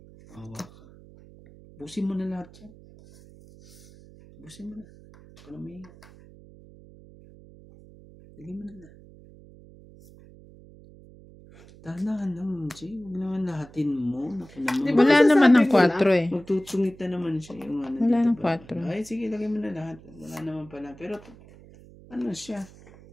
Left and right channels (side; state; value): right; noise; hum, 22 dB below the sound